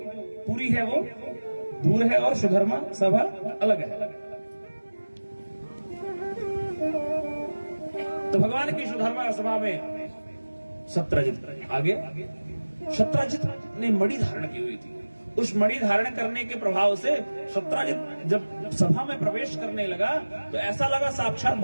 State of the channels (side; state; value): both; inverted; correlation -1.00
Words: पुरी है वो दूर है और सुधर्मा सभा अलग है। तो भगवान की सुधर्मा सभा में सत्राजित आगे, सत्राजित ने मणि धारण की हुई थी। उस मणि धारण करने के प्रभाव से सत्राजित जब सभा में प्रवेश करने लगा तो ऐसा लगा साक्षात